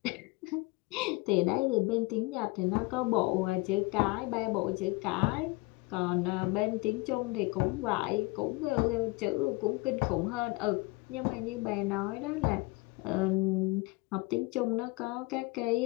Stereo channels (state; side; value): quieter; right; 24.2 dB